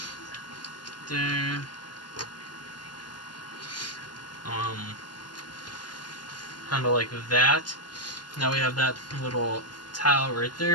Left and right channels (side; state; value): right; late; 0.71 ms